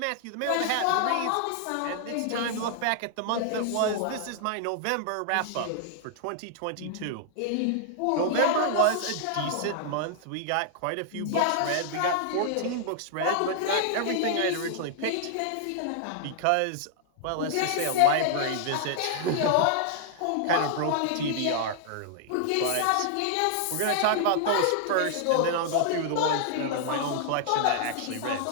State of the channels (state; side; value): different; both; correlation -0.01